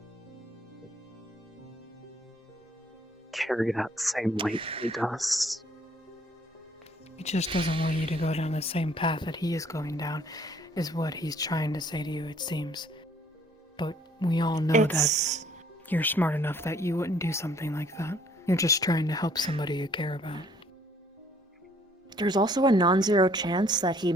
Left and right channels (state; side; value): normal; both; correlation 0.61